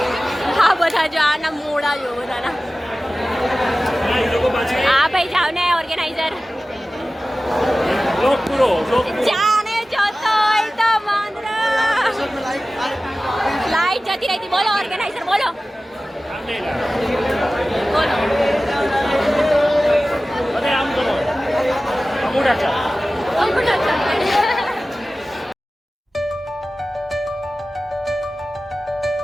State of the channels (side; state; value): both; normal; correlation 0.96